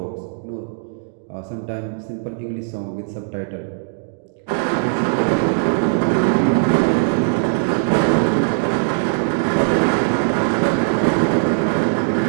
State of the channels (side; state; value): left; silent; digital silence